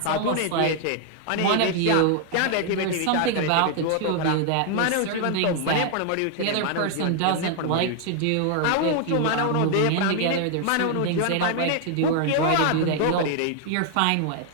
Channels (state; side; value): different; both; correlation 0.00